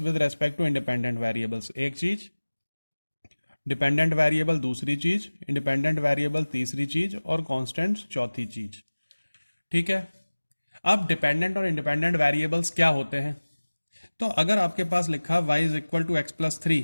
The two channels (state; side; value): inverted; both; correlation -1.00